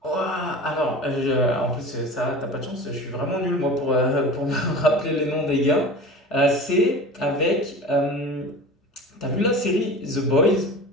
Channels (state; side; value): normal; both; correlation 0.35